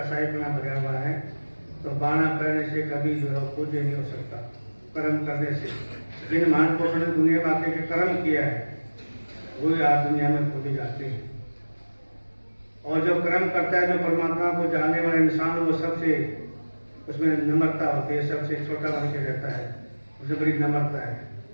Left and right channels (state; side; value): inverted; both; correlation -1.00